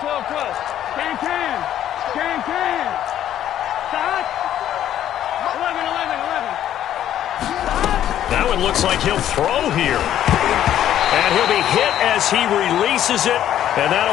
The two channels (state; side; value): quieter; right; 11.3 dB